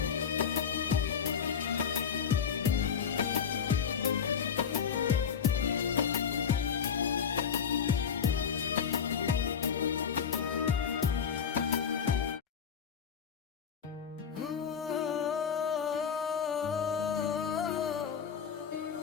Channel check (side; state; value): right; quieter; 7.2 dB